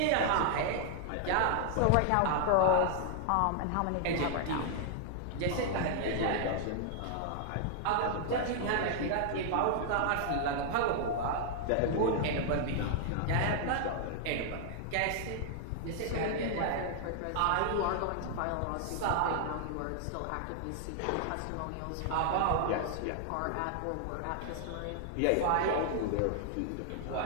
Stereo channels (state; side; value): different; both; correlation -0.01